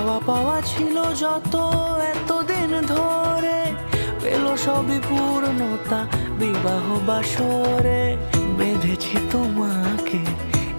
পাওয়া ছিল যত এতদিন ধরে, পেল সবই পূর্ণতা বিবাহ বাসরে। বেঁধেছি তোমাকে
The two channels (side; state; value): both; inverted; correlation -1.00